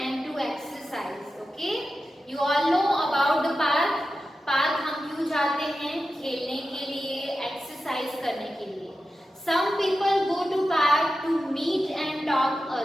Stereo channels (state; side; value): normal; both; correlation 0.92